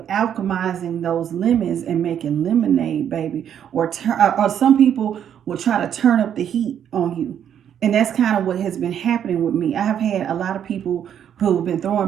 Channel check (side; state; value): left; quieter; 9.2 dB